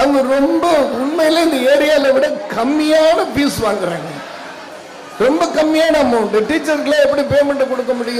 ரொம்ப உண்மையில இந்த ஏரியால விட கம்மியான ஃபீஸ் வாங்குறாங்க. ரொம்ப கம்மியான அமௌண்ட். டீச்சருக்குலாம் எப்படி பேமெண்ட் கொடுக்க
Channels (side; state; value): both; identical; correlation 1.00